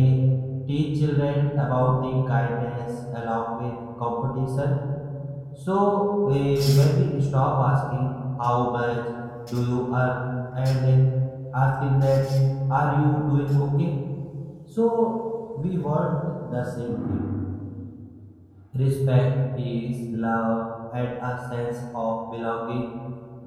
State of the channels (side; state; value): both; identical; correlation 1.00